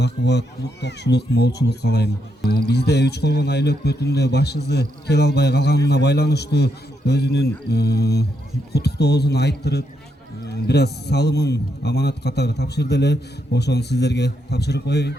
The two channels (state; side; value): normal; both; correlation 0.80